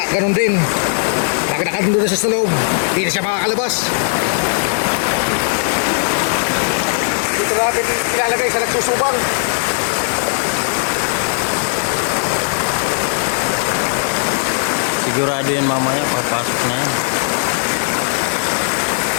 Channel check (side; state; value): right; silent; digital silence